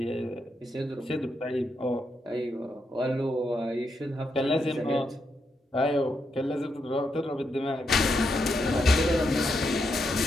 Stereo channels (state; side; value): normal; both; correlation 0.82